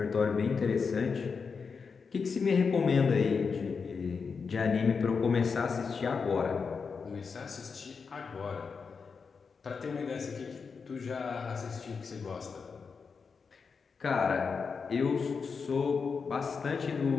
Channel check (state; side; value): quieter; right; 5.4 dB